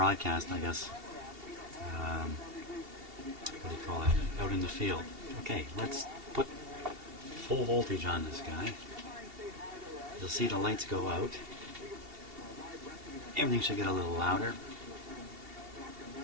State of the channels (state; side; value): late; left; 2.7 ms